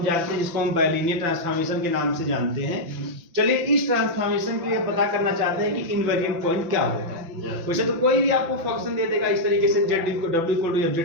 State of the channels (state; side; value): late; left; 5.9 ms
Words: जानते हैं, जिसको हम बाइलिनियर ट्रांसफॉर्मेशन के नाम से जानते हैं, चलिए इस ट्रांसफॉर्मेशन के लिए पता करना चाहते हैं कि इनवेरिएंट पॉइंट क्या होगा। वैसे तो कोई भी आपको फंक्शन दे देगा इस तरीके से Z W equal to